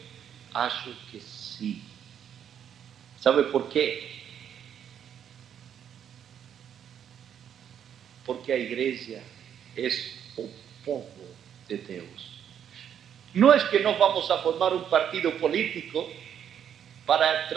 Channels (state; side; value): quieter; left; 9.0 dB